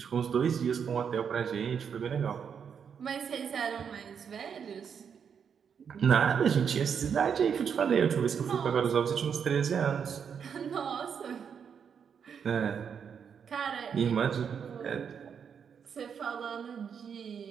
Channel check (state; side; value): quieter; left; 7.2 dB